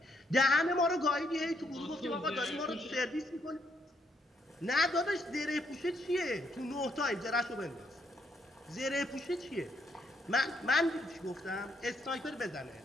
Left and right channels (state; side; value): normal; both; correlation 0.74